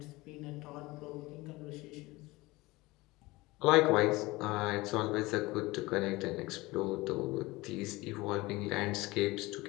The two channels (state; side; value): quieter; right; 21.2 dB